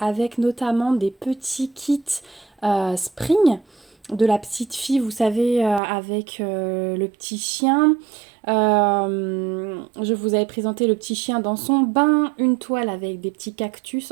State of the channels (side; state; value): left; drops out; at 5.8 s